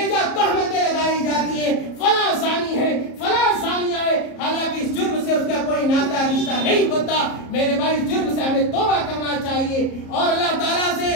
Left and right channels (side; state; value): right; late; 34 ms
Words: جا تہمتیں لگائی جاتی ہیں، فلاں زانی ہے، فلاں زانیہ ہے، حالانکہ اس جرم سے اس کا کوئی ناتا رشتہ نہیں ہوتا. میرے بھائی اس جرم سے ہمیں توبہ کرنا چاہیے اور اللہ تعالیٰ سے